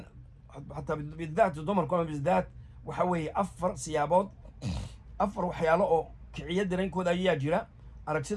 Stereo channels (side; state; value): both; identical; correlation 1.00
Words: xataa bidaat dumarku ama bidaat waxa weeye 4 siyaabood 4 waxyaalo oo kiciya dareenkooda ayaa jira